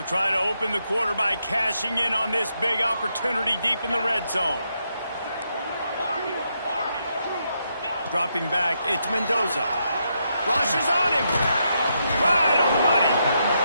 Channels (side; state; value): both; inverted; correlation -0.80